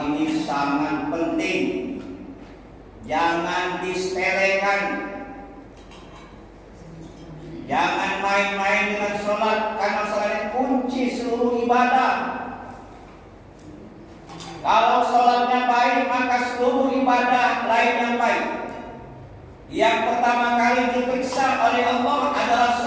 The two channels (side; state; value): both; identical; correlation 1.00